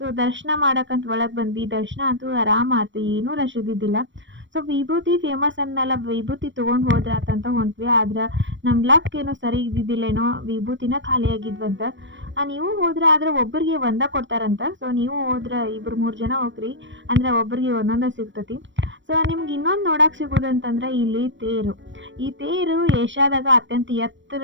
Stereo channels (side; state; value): left; late; 0.54 ms